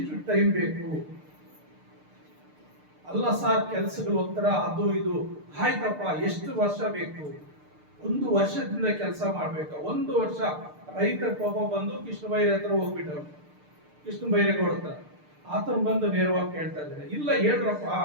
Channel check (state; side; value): late; left; 6.6 ms